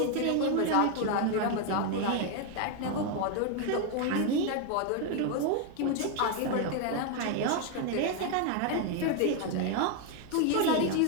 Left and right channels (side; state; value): both; different; correlation 0.01